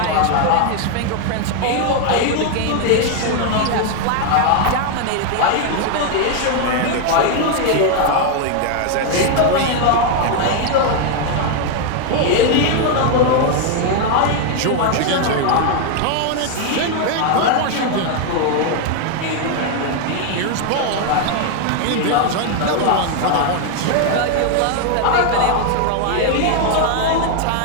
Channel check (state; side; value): different; both; correlation 0.01